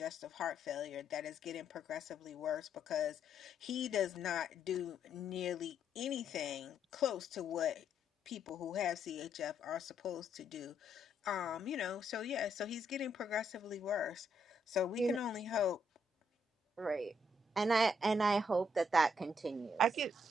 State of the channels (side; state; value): both; normal; correlation 0.74